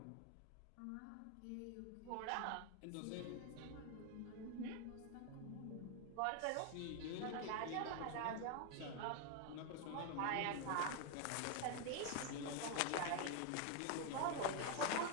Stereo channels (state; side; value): different; both; correlation 0.01